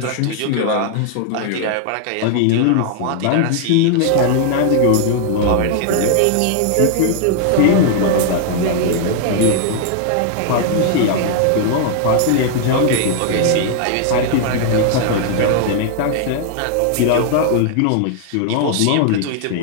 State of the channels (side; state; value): both; different; correlation 0.00